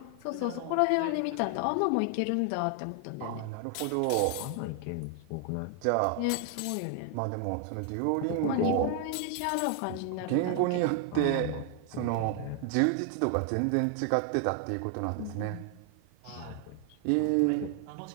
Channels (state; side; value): different; both; correlation 0.00